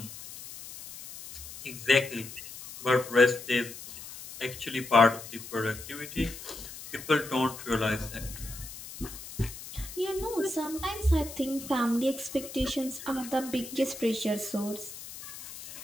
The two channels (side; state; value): left; noise; hiss, 13 dB below the sound